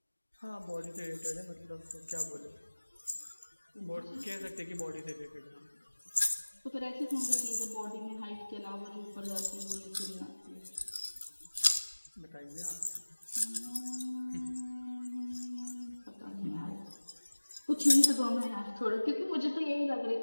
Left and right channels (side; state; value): both; inverted; correlation -1.00